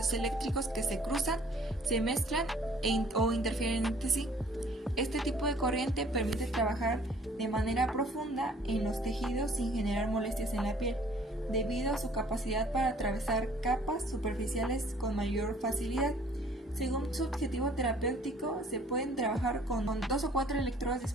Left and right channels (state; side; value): normal; both; correlation 0.56